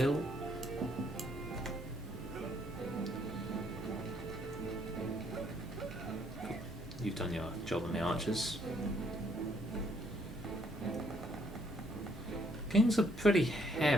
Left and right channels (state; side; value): normal; both; correlation 0.68